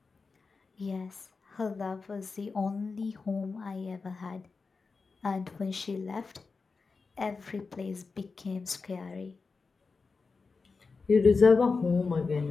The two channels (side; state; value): right; quieter; 4.5 dB